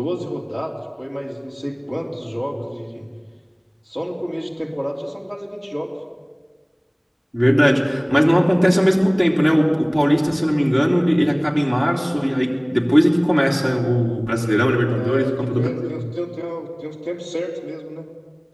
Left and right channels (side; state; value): both; identical; correlation 1.00